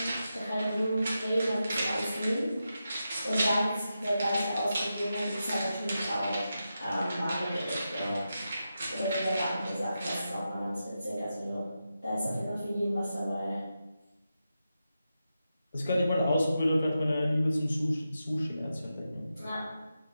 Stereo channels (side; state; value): both; inverted; correlation -0.89